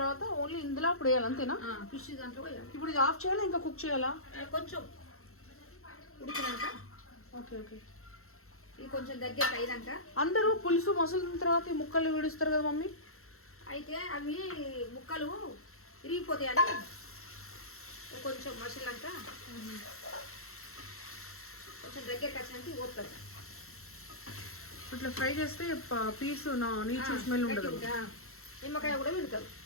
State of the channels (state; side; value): late; right; 0.63 ms